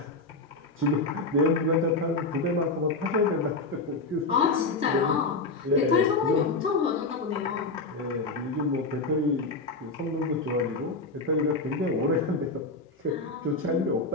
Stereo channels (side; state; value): right; quieter; 3.4 dB